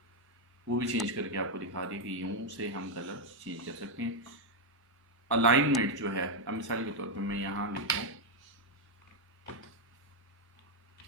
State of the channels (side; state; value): both; normal; correlation 0.01